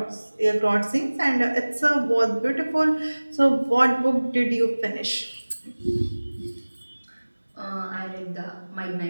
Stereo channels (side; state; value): both; inverted; correlation -1.00